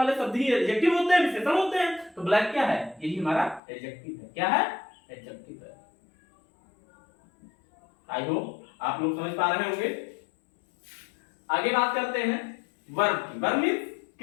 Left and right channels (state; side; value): drops out; right; at 3.6 s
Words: शब्द ही एडजेक्टिव होते हैं, विशेषण होते हैं। तो ब्लैक क्या है? यही हमारा एडजेक्टिव है। क्या है? एडजेक्टिव है। आई होप आप लोग समझ पा रहे होंगे। आगे बात करते हैं वर्ब की। वर्ब मींस